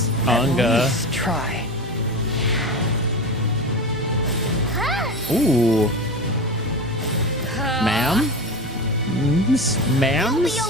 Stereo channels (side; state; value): both; normal; correlation 0.26